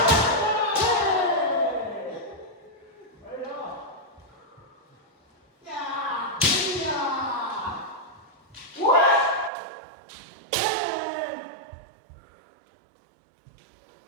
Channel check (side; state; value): left; drops out; at 9.5 s